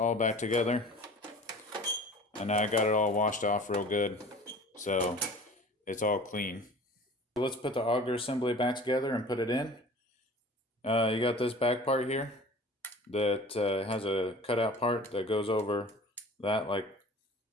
back together. And I got it all washed off real good, so it's all clean. So let's put the auger assembly back together and put it in. You got this back part here that has a cutout part that goes over that like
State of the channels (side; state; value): both; normal; correlation 0.43